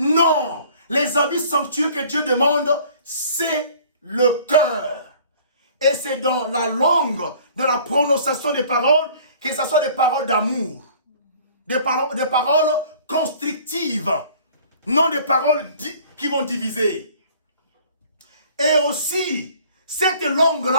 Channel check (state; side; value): inverted; both; correlation -0.52